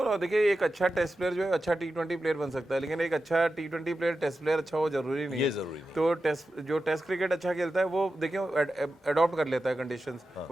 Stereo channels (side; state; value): both; normal; correlation 0.92